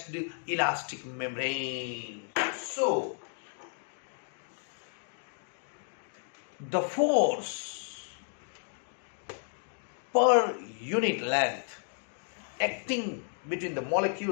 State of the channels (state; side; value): silent; right; 56 dB below the other